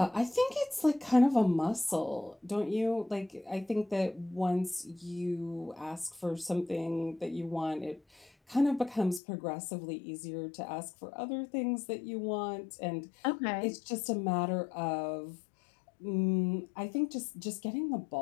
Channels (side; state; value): right; drops out; at 9.2 s